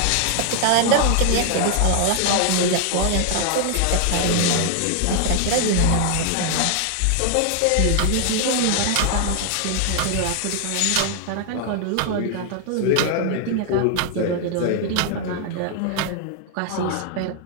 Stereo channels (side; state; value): both; different; correlation 0.00